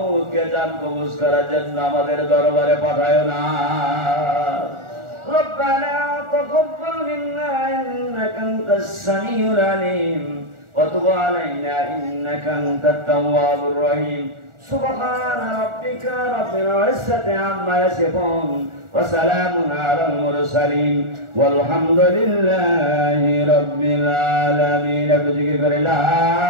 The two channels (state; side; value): late; left; 1.4 ms